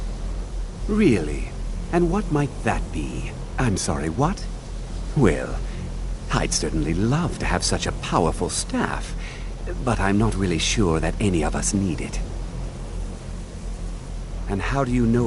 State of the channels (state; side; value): identical; both; correlation 1.00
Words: Really? And what might that be? I'm sorry, what? Well, I'd certainly love to have such a powerful staff, but I'm not really sure that any of us need it. And how do you